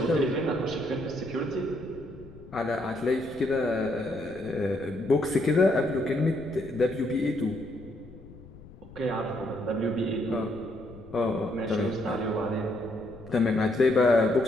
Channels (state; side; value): noise; left; rumble, 19 dB below the sound